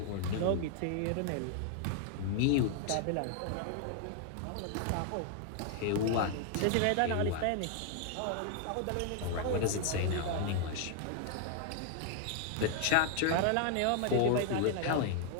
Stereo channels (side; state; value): both; different; correlation 0.00